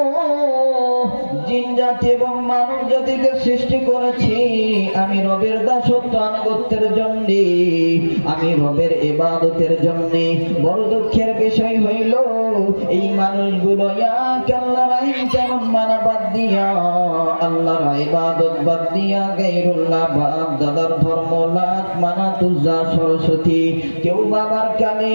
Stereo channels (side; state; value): both; inverted; correlation -1.00